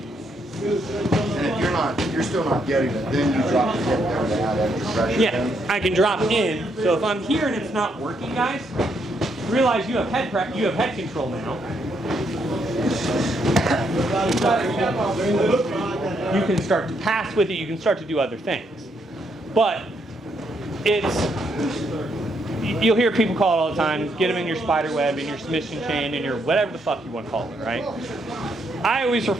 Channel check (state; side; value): normal; both; correlation 0.75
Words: if you're still not getting it, then you drop the hip down to add extra pressure. Yeah, then. I can drop in. So if I'm here and it's not working, guys, realize you have head control now. You can start to pass with it. You can start to do other things. But you'll hear people call it all the time. Get them in your spider web, in your submission chain, in your whatever the fuck you want to call it, right? I always